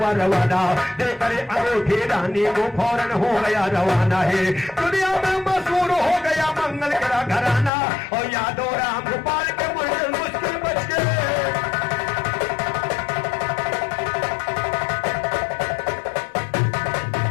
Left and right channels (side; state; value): right; drops out; at 7.7 s